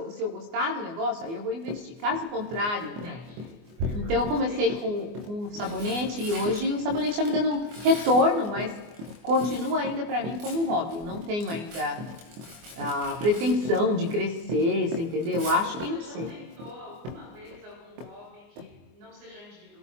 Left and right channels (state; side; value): late; left; 24 ms